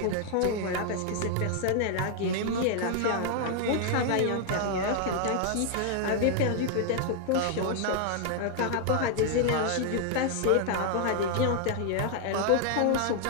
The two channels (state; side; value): different; both; correlation 0.00